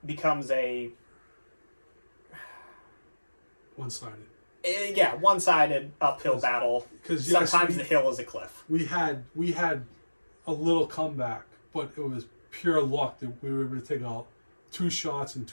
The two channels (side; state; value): both; inverted; correlation -1.00